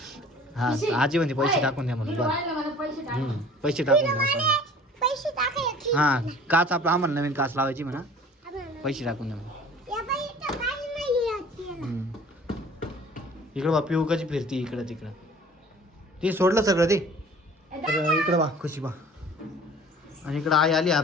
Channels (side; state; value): both; normal; correlation 0.48